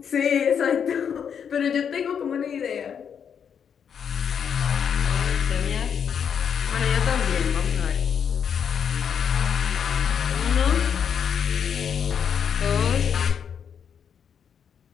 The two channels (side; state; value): right; quieter; 7.6 dB